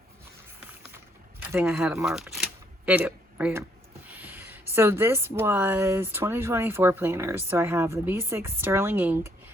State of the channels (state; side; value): normal; both; correlation 0.69